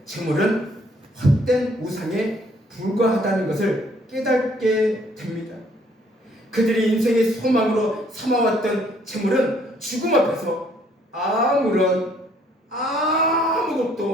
재물은 헛된 우상에 불과하다는 것을 깨닫게 됩니다. 그들이 인생의 소망으로 삼아왔던 재물은 죽음 앞에서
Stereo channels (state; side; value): normal; both; correlation 0.64